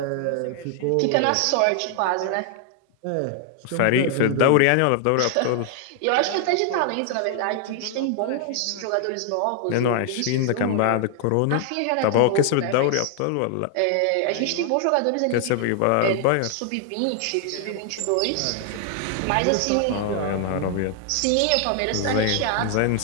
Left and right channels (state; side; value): different; both; correlation 0.00